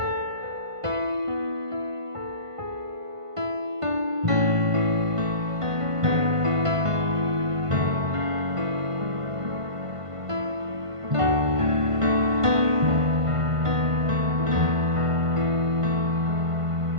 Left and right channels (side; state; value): left; late; 1.5 ms